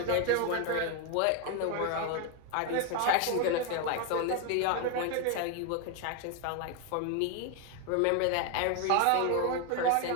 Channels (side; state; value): both; different; correlation 0.01